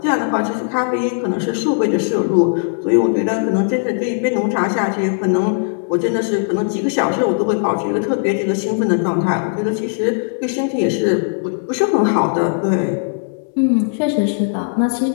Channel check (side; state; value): right; silent; digital silence